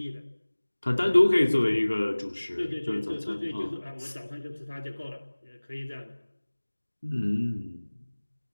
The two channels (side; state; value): both; inverted; correlation -1.00